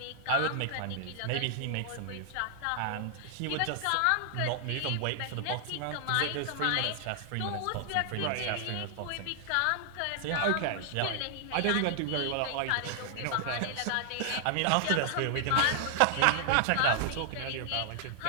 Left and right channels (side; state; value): both; different; correlation -0.01